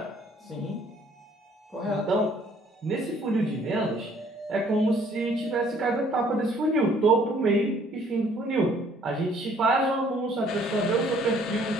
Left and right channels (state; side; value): normal; both; correlation 0.60